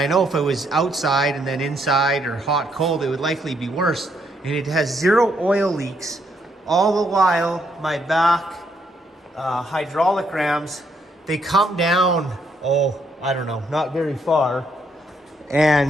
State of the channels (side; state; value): both; normal; correlation 0.74